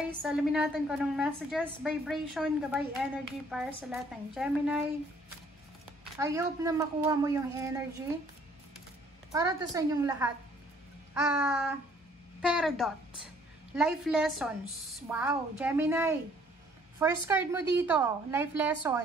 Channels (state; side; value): normal; both; correlation 0.61